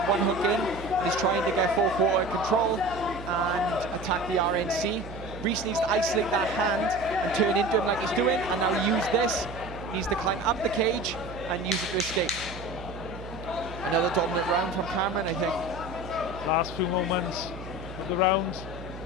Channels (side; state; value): right; noise; hum, 12 dB below the sound